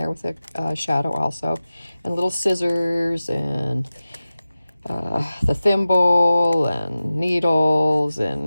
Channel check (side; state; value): both; inverted; correlation -0.95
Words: with a shadow also, and little scissors, and the thimble, and needles,